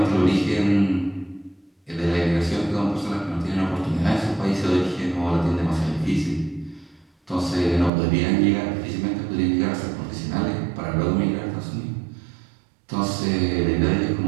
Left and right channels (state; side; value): drops out; left; at 7.9 s